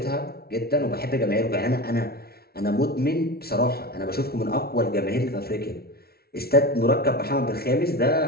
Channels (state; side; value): late; right; 0.45 ms